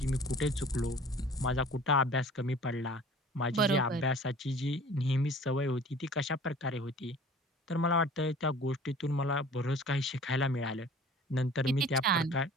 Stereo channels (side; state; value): both; normal; correlation 0.46